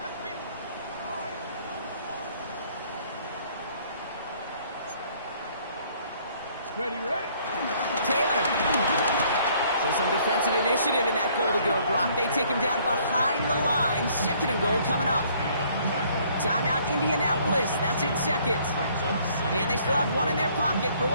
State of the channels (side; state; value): both; inverted; correlation -0.61